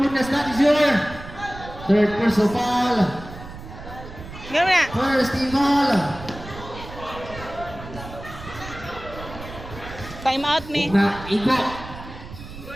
that is your third personal foul. Gawin na. First team foul. Time out me. Na igo.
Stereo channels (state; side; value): noise; right; rumble, 13 dB below the sound